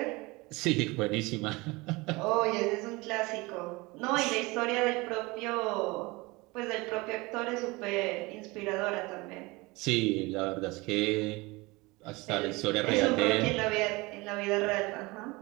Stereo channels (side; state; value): left; quieter; 23.6 dB